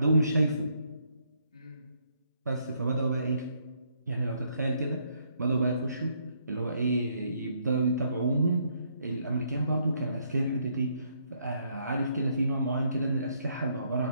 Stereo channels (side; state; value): both; inverted; correlation -0.71